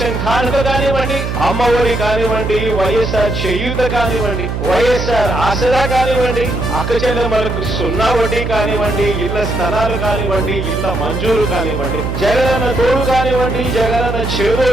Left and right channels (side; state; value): right; noise; hum, 3 dB below the sound